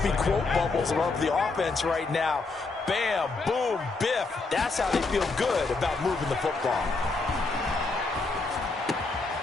be quote bubbles above the offense right now. Bam, boom, biff. That's how they feel good about moving the football.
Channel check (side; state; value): right; quieter; 3.8 dB